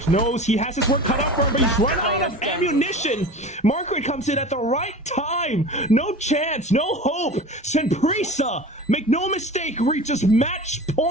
knows he has his work cut out for him, but he's run out of ammunition. Margaret comes in at the right time. No chance, no hope. Simprisa, make no mistake, reaches match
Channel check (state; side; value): normal; both; correlation 0.36